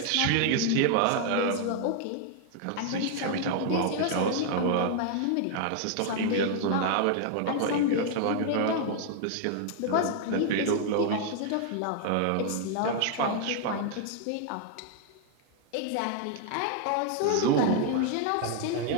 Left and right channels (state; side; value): different; both; correlation 0.00